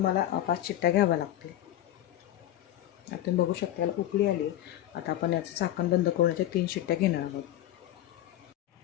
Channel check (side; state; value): right; quieter; 13.2 dB